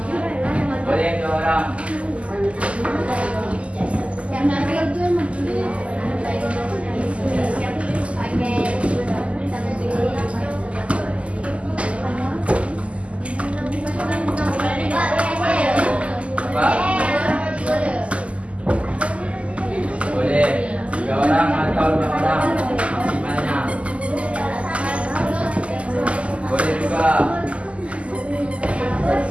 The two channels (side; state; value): left; late; 0.060 ms